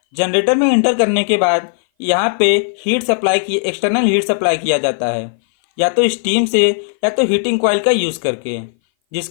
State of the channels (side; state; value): right; silent; 59 dB below the other